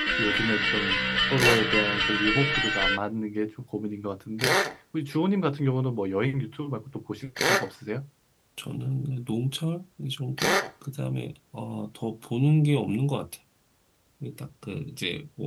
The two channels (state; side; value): identical; both; correlation 1.00